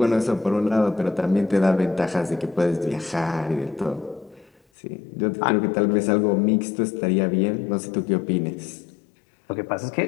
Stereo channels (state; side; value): drops out; right; at 4.6 s